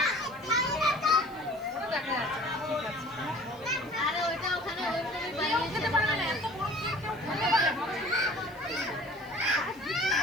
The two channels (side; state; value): right; noise; hiss, 26 dB below the sound